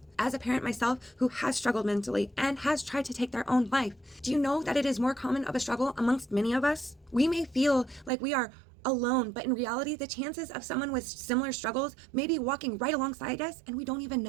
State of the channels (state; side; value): drops out; left; at 8.1 s